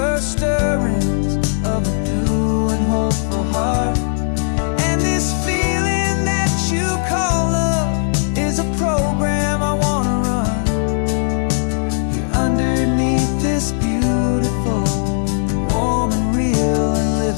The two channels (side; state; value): right; silent; digital silence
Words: stirrings of a new and hopeful heart. And this feeling that you call love is a program I wanna run here underneath this beautiful, warm and real and